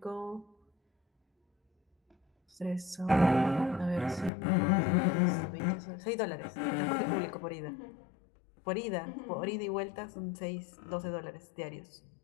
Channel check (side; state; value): right; drops out; at 4.3 s